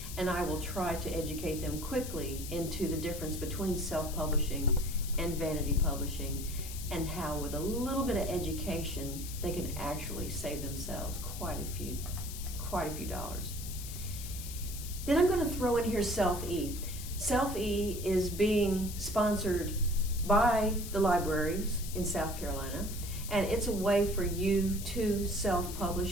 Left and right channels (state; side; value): noise; left; hiss, 10 dB below the sound